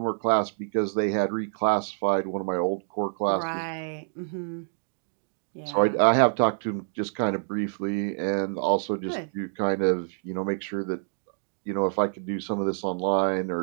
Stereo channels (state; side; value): silent; left; digital silence